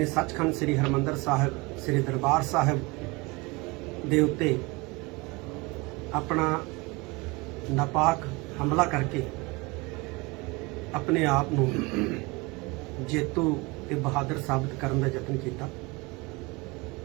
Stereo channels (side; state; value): left; quieter; 25.4 dB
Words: ਸੱਚਖੰਡ ਸ੍ਰੀ ਹਰਿਮੰਦਰ ਸਾਹਿਬ ਸ੍ਰੀ ਦਰਬਾਰ ਸਾਹਿਬ ਦੇ ਉੱਤੇ ਆਪਣਾ ਨਾਪਾਕ ਹਮਲਾ ਕਰਕੇ ਆਪਣੇ ਆਪ ਨੂੰ ਜੇਤੂ ਤੇ ਬਹਾਦਰ ਸਾਬਤ ਕਰਨ ਦਾ ਯਤਨ ਕੀਤਾ,